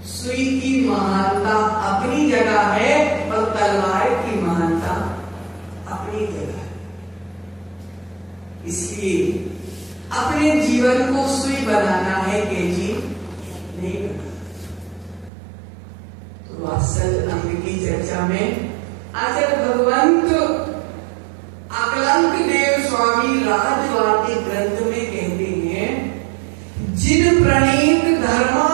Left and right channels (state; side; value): drops out; left; at 15.3 s